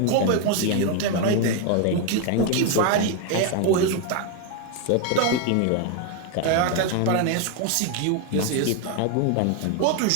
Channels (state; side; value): different; both; correlation 0.01